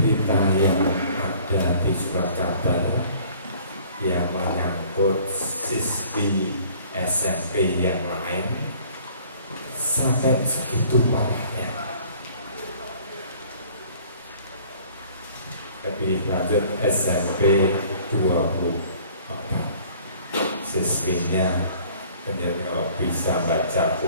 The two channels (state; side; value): inverted; both; correlation -0.53